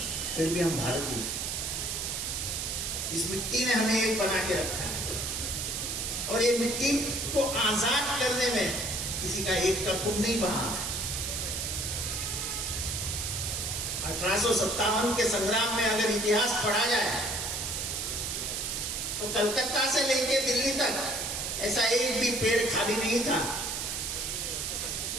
फिर भी हम भारतीय। इस मिट्टी ने हमें एक बना के रखा है, और ये मिट्टी को आजाद करने में किसी का एक का खून नहीं बहा। 1857 के संग्राम में अगर इतिहास पढ़ा जाए तो कलकत्ता से लेके दिल्ली तक ऐसा एक भी पेड़ खाली नहीं था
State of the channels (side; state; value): right; noise; hiss, 2 dB below the sound